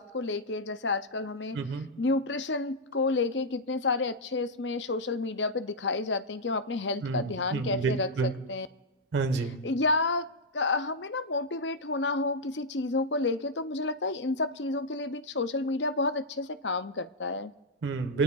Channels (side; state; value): both; normal; correlation -0.04